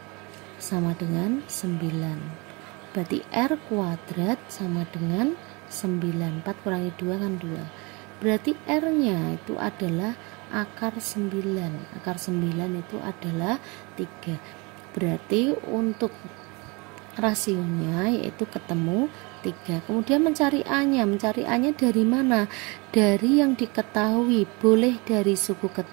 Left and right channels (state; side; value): quieter; left; 28.1 dB